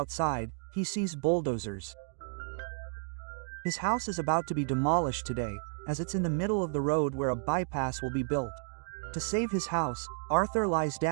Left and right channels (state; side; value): silent; left; 56 dB below the other